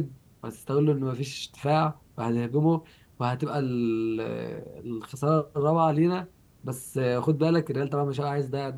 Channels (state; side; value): identical; both; correlation 1.00